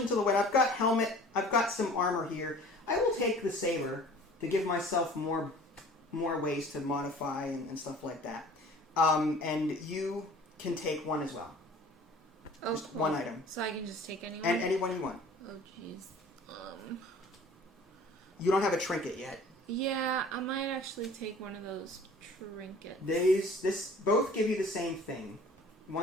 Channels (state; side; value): normal; both; correlation 0.47